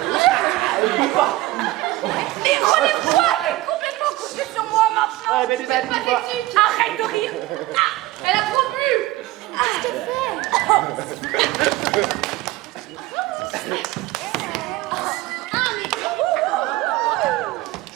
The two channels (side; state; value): left; quieter; 17.9 dB